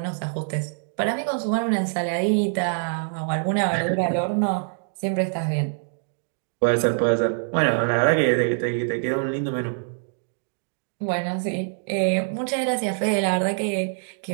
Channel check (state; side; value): silent; left; digital silence